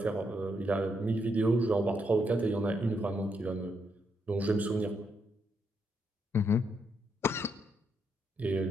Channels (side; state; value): both; normal; correlation 0.78